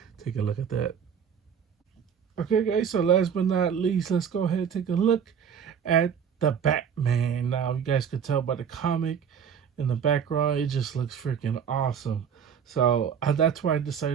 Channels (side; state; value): left; quieter; 7.6 dB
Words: take a look at that. Okay, guys, so last but not least, let's go ahead and take a look at the Batman. Now, you guys could tell by the comic in the background, it just looks freaking awesome. So that's why I